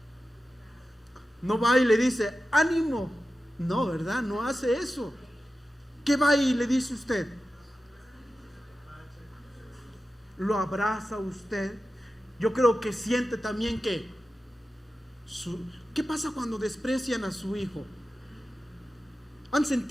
no va y le dice ánimo, no, ¿verdad? No hace eso. ¿Qué va y le dice usted? Lo abraza usted. Yo creo que siente también que ¿qué pasa cuando desprecian a su hijo? ¿Han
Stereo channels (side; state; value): both; normal; correlation 0.93